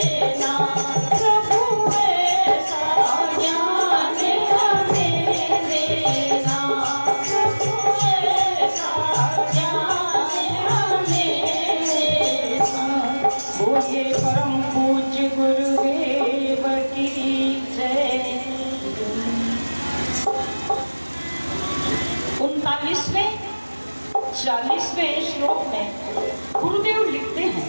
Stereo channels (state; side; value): inverted; both; correlation -1.00